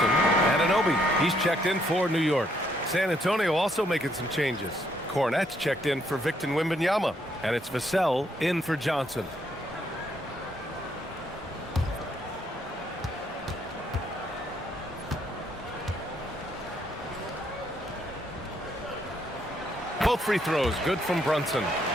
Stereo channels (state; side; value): normal; both; correlation 0.71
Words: Anunoby, he's checked in for New York. San Antonio also making some changes. Cornette's checked in for Victor Wembanyama, and it's Vassell in for Johnson. Both free throws good from Brunson.